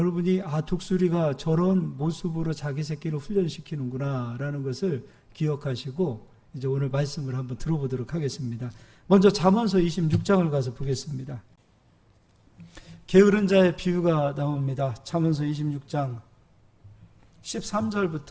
독수리가 저런 모습으로 자기 새끼를 훈련시키는구나 라는 것을 기억하시고 이제 오늘 말씀을 한번 들어보도록 하겠습니다. 먼저 잠언서 26장을 가서 보겠습니다. 게으른 자의 비유가 나옵니다. 잠언서 26장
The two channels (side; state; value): both; identical; correlation 1.00